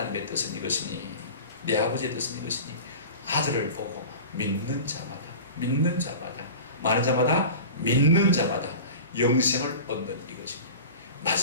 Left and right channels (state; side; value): inverted; both; correlation -0.35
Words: 뜻은 이것이니 내 아버지의 뜻은 이것이니 아들을 보고 믿는 자마다 많은 자마다 믿는 자마다 영생을 얻는 이것이니